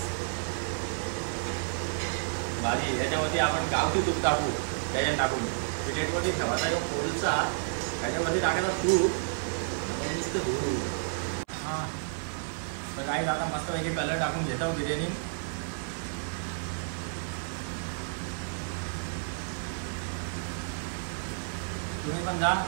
भारी. याच्यामध्ये आपण गावठी तूप टाकू, त्याच्यात टाकून प्लेटवरती ठेवायचा जो कोळसा त्याच्यावरती टाकायचा तूप नुसतं धुरू. हां तर काही आता मस्तपैकी कलर टाकून घेतो बिर्याणी. तुम्ही पण जा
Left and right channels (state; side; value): silent; left; 57 dB below the other